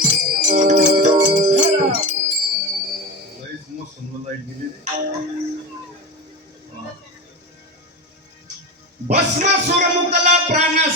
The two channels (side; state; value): both; normal; correlation 0.24